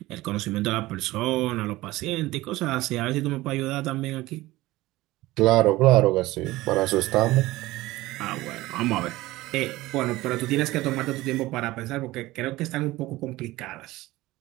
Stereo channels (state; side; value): quieter; left; 18.4 dB